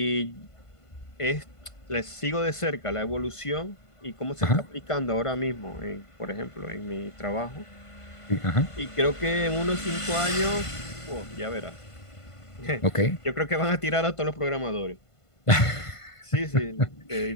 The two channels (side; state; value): right; late; 1.5 ms